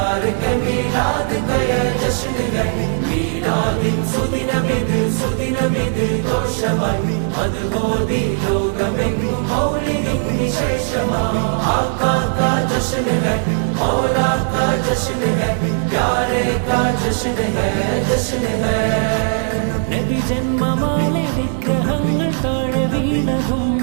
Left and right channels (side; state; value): left; silent; digital silence